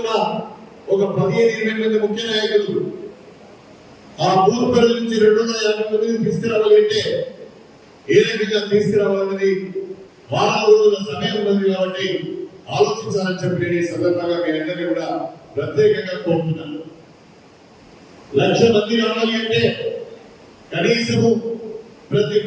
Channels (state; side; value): identical; both; correlation 1.00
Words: ఒక 15-20 మంది ముఖ్య నాయకులు ఆ బూత్ పరిధి నుంచి 250 మందిని తీసుకురావాలంటే ఏ రకంగా తీసుకురావాలన్నది వారం రోజుల సమయం ఉన్నది కాబట్టి ఆలోచించాలని చెప్పి నేను ఈ సందర్భంగా మీ అందరినీ కూడా ప్రత్యేకంగా కోరుతున్నాను. 1,00,000 మంది రావాలి అంటే కనీసము ప్రతి